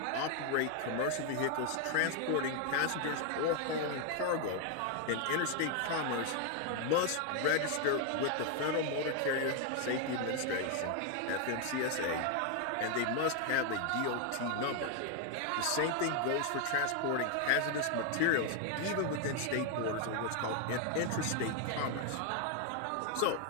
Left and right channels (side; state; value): both; different; correlation 0.01